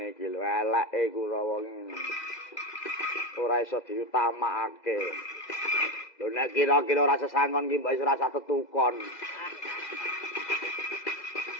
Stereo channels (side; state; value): right; late; 2.0 ms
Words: iki lho, eleke Kurawa ngene. Ora iso diutamakake. Lho nek kira-kira ora sesangon ki mbok ora usah tetukon.